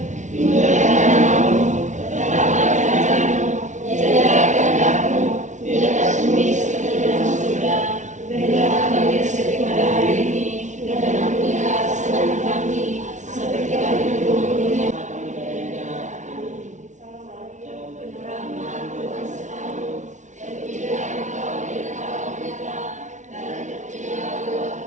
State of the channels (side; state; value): left; late; 0.36 ms